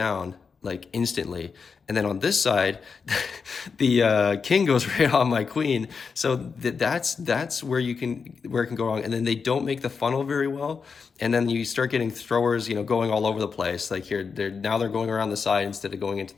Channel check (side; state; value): right; quieter; 5.5 dB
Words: like instantly, and then on this side the king goes right on my queen. So that's where it can go wrong. And then they don't make the funnel very well, and then you start getting throwers going all over the place. Like here, now they're going around the side instead of going into